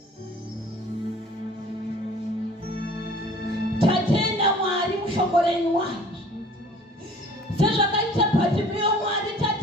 tatenda Mwari mushoko renyu Mwari, sezvakaita Bhatimiyo Mwari,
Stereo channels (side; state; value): both; normal; correlation 0.49